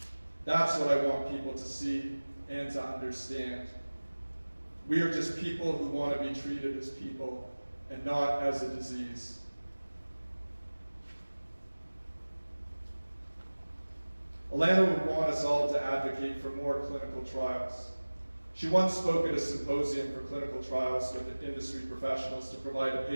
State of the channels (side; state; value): both; inverted; correlation -1.00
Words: That's what I want people to see and to understand. We are just people who want to be treated as people and not as a disease. Alana would want us all to advocate for more clinical trials. She once spoke at a symposium for clinical trials with industry professionals to provide a